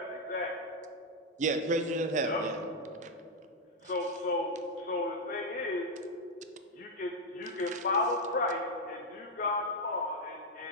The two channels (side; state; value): both; normal; correlation 0.02